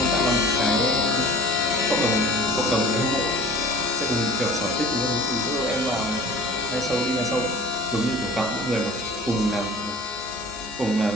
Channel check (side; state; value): both; normal; correlation 0.44